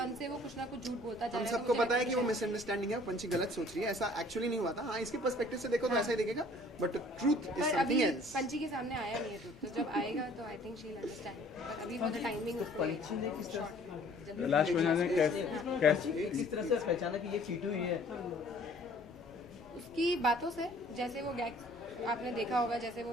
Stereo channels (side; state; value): both; normal; correlation 0.54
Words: से वो कुछ ना कुछ झूठ बोलता जा रहा है। सबको पता है कि वो मिसअंडरस्टैंडिंग है, पंछी गलत सोच रही है, ऐसा एक्चुअली नहीं हुआ था। हाँ, इसके पर्सपेक्टिव से देखो तो ऐसा ही दिखेगा, but truth is something else. पंछी के सामने आया नहीं है ट्रूथ, तो जब आएगा तो I think she will understand, but अभी फॉर द टाइमिंग पंछी ने किस तरह लास्ट में कैसे किस तरह से पहचाना कि ये टीटू ही है? उसकी बातों से, जैसे वो गैग आपने देखा होगा, जैसे वो